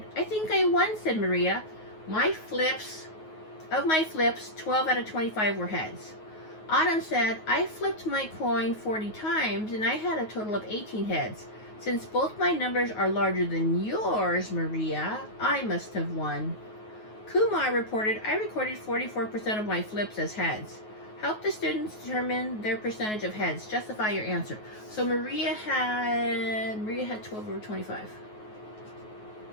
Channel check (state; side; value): late; right; 9.4 ms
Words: I think I won, said Maria. Of my flips, 12 out of 25 were heads. Autumn said, I flipped my coin 40 times and I had a total of 18 heads. Since both my numbers are larger than yours, Maria, I must have won. Kumar reported, I recorded 44% of my flips as heads. Help the students determine their percentage of heads. Justify your answer. So Maria had 12 over 25.